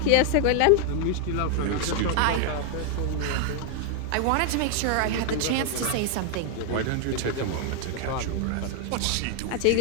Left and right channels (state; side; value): different; both; correlation 0.00